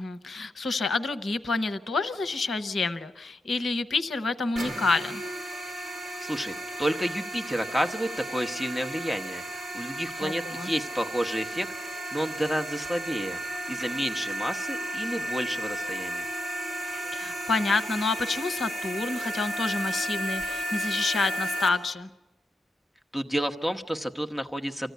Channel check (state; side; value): normal; both; correlation 0.88